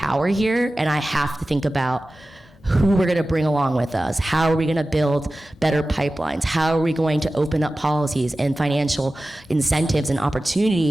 here and I have to think about who we're going to bring along with us. How are we going to build better pipelines? How are we going to open up policies and financial incentives and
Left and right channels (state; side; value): normal; both; correlation 0.95